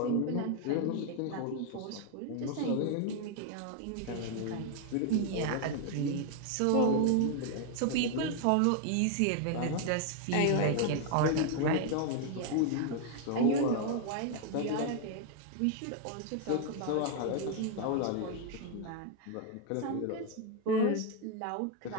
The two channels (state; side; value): different; both; correlation 0.00